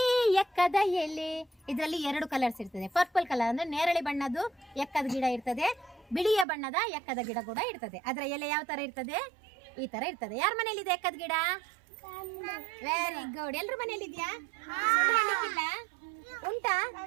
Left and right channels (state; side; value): drops out; left; at 6.5 s